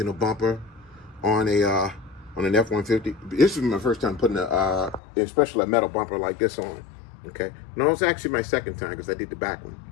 a bumper on an F-150. This is my first time putting especially a metal bumper like this on. Okay. No, it's actually my second time because I did the back one.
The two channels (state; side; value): drops out; right; at 5.0 s